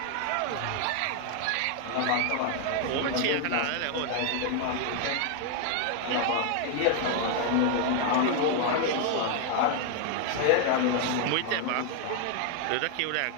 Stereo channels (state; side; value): different; both; correlation 0.00